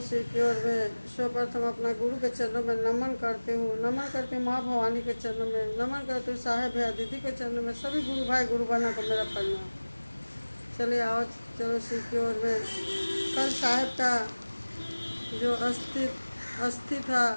सिक्योर में। सर्वप्रथम अपना गुरु के चरणों में नमन करती हूँ, नमन करती हूँ माँ भवानी के चरणों में, नमन करती हूँ साहेब भैया दीदी के चरणों में, सभी गुरु भाई गुरु बहनों को मेरा प्रणाम। चले आओ चलो सिक्योर में। कल साहेब का जो अस्थि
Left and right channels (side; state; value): both; inverted; correlation -1.00